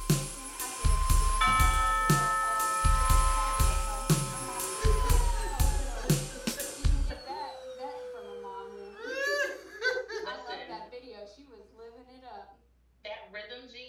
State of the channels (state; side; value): identical; both; correlation 1.00